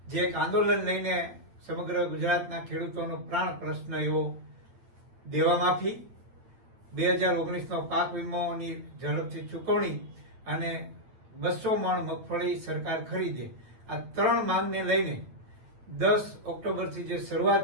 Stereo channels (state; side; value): late; left; 8.9 ms